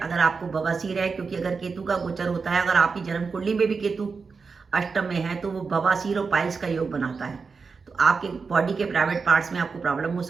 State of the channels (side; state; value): left; quieter; 4.9 dB